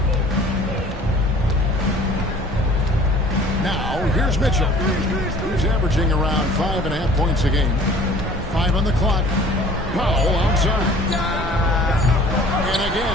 Now, here's Mitchell. He's averaging around 5.5 points a game. 5 on the clock. Powell outside. And again,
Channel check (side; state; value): both; normal; correlation 0.49